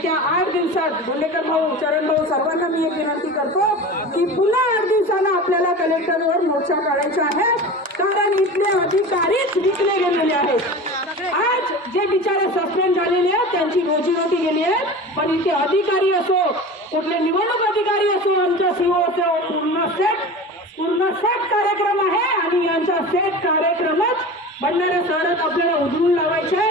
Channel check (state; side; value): normal; both; correlation 0.33